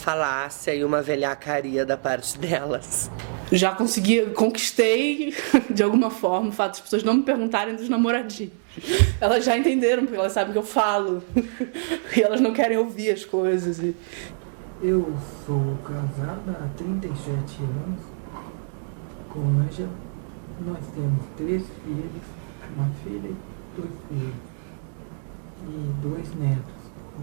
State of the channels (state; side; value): silent; left; digital silence